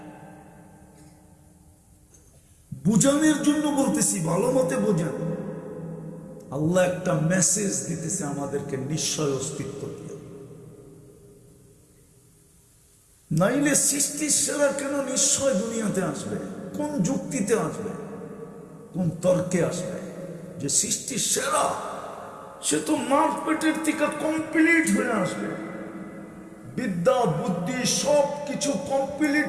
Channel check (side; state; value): both; identical; correlation 1.00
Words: বুঝানোর জন্য বলতেছি, ভালো মতে বোঝান। আল্লাহ একটা মেসেজ দিতেছে আমাদেরকে, নিশ্চয় অস্তিত্ব দিয়ে। নাইলে সৃষ্টির সেরা কেন নিশ্চয় দুনিয়াতে আসবে? কোন যুক্তিতে আসবে? কোন তর্কে আসবে যে সৃষ্টির সেরা? সে তো মার পেটের থেকে কমপ্লিট হয়ে আসবে, বিদ্যা বুদ্ধি সব কিছু